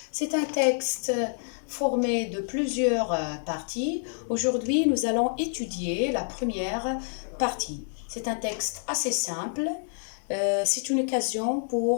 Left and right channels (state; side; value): silent; right; digital silence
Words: C'est un texte formé de plusieurs parties. Aujourd'hui, nous allons étudier la première partie. C'est un texte assez simple. C'est une occasion